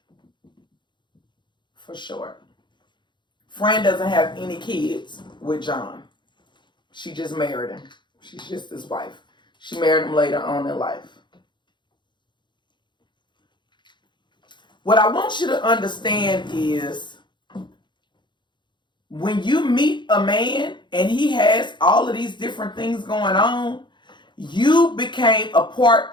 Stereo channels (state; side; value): late; right; 0.22 ms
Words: for short. Fran doesn't have any kids with John. She just married him. She's just his wife. She married him later on in life. What I want you to understand is when you meet a man and he has all of these different things going on, you became a